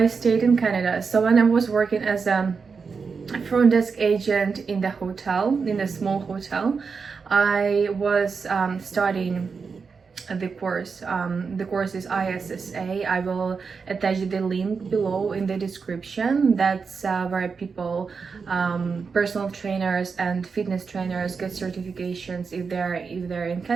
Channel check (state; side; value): quieter; left; 5.3 dB